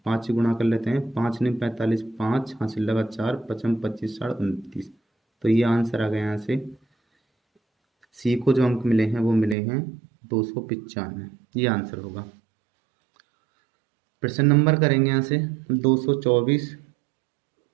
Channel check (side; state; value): left; drops out; at 9.6 s